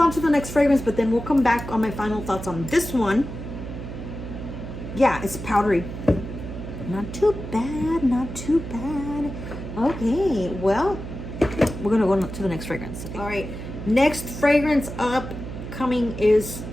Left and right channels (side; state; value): right; noise; hum, 9 dB below the sound